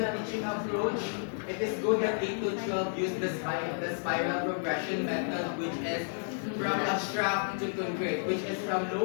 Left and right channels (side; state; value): right; silent; digital silence